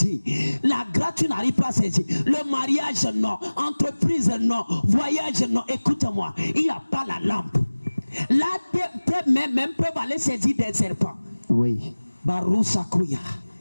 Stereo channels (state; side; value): inverted; both; correlation -1.00